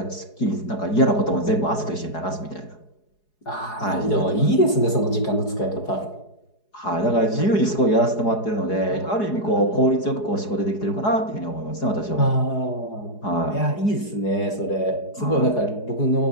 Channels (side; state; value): right; late; 4.8 ms